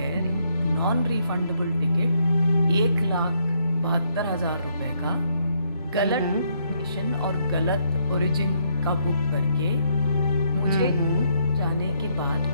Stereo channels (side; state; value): both; inverted; correlation -0.73